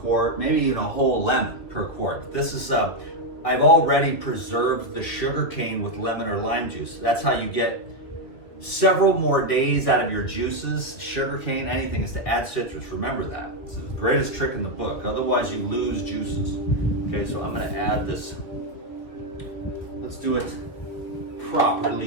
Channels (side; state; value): right; late; 2.5 ms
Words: maybe even a whole lemon per quart. This is, I've already preserved the sugar cane with lemon or lime juice. That's how you get several more days out of your juices. Sugar cane, anything, is to add citrus. Remember that. It's the greatest trick in the book. Otherwise, you lose juices. Okay, so I'm gonna add this. Let's do it